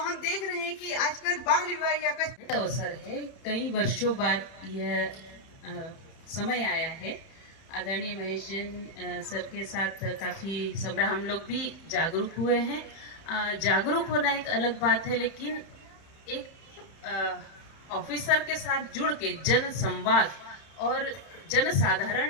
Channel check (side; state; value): right; late; 31 ms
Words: देख रहे हैं कि आजकल बाल विवाह या अवसर है। कई वर्षों बाद यह समय आया है। आदरणीय महेश जैन सर के साथ काफ़ी समय हम लोग भी जागरूक हुए हैं। जागरूक होना एक अलग बात है, लेकिन एक ऑफिसर के साथ जुड़ के जन संवाद और जनसाधारण